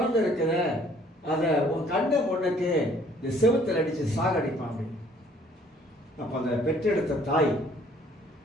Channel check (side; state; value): both; normal; correlation 0.59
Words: இருக்குத, அதை உன் கண்ணை முன்னுக்கு இந்த செவுத்தில் அடித்து சாகடிப்பாங்க. அப்போ அந்த பெற்றெடுத்த தாய்